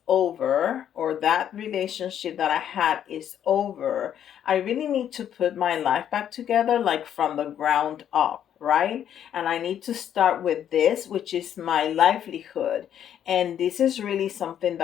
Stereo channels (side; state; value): right; quieter; 9.8 dB